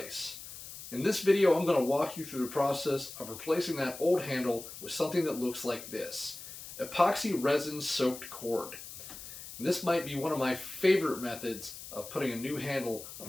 In this video, I'm going to walk you through the process of replacing that old handle with something that looks like this: epoxy resin soaked cord. And this might be one of my favorite methods of putting a new handle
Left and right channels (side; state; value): left; noise; hiss, 13 dB below the sound